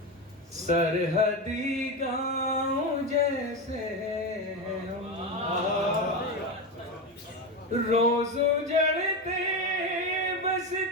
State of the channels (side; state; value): both; normal; correlation 0.16